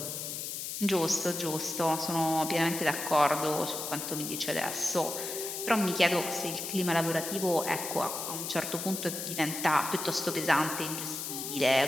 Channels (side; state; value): left; noise; hiss, 5 dB below the sound